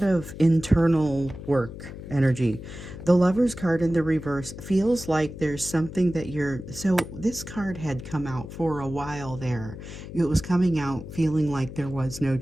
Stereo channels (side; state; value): left; noise; hum, 12 dB below the sound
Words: of internal work energy. The Lover's card in the reverse feels like there's something that so this card had come out for a while there. It was coming out feeling like there was no